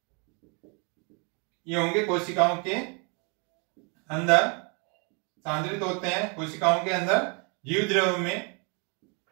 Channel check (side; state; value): left; quieter; 34.5 dB